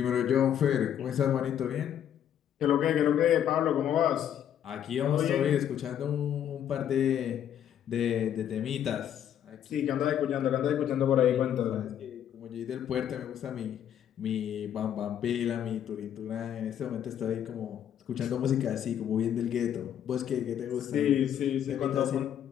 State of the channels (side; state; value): right; quieter; 9.9 dB